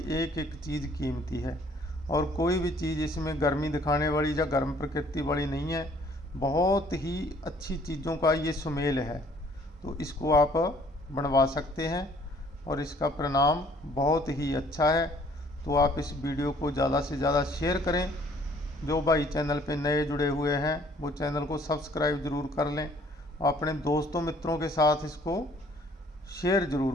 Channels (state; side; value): normal; both; correlation 0.58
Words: एक एक चीज़ कीमती है और कोई भी चीज़ इसमें गर्मी दिखाने वाली या गर्म प्रकृति वाली नहीं है। बहुत ही अच्छी चीज़ों का ये सुमेल है, तो इसको आप बनवा सकते हैं और इसका परिणाम बहुत ही अच्छा है। तो आप इस वीडियो को ज़्यादा से ज़्यादा शेयर करें। जो भाई चैनल पे नए जुड़े हुए हैं वो चैनल को सब्सक्राइब ज़रूर कर लें और अपने दोस्तों मित्रों के साथ इसको शेयर